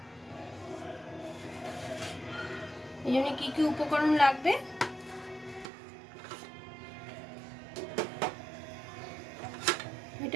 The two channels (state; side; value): drops out; left; at 5.7 s